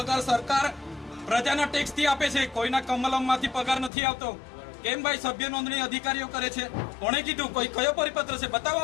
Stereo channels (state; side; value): drops out; right; at 3.9 s